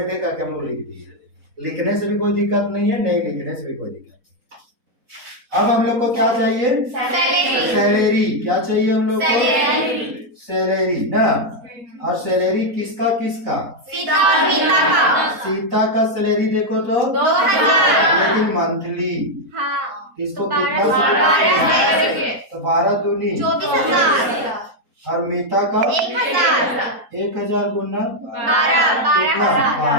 है क्या हम लोग लिख दिए। लिखने से भी कोई दिक्कत नहीं है, नहीं लिखने से भी कोई दिक्कत। अब हम लोग को क्या चाहिए? सैलरी। क्या चाहिए हम लोग को? सैलरी ना। और सैलरी किसका किसका? सीता का सैलरी देखो तो 2000, लेकिन मंथली किसको कितना? तो 12 दूनी 24,000। और मीता का 1000 गुना कितना?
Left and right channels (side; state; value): left; late; 4.5 ms